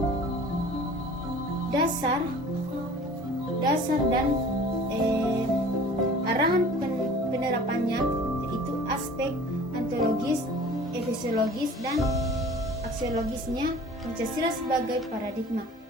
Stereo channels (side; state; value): both; normal; correlation 0.45